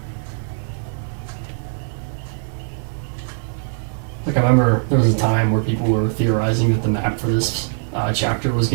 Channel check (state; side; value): silent; left; 65 dB below the other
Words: Like, I remember there was a time where people were theorizing that the map for this chapter was